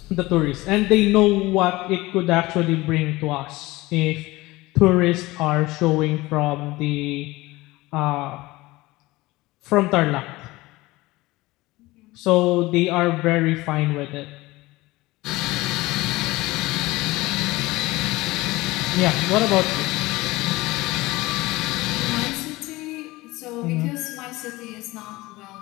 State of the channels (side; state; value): right; quieter; 20.1 dB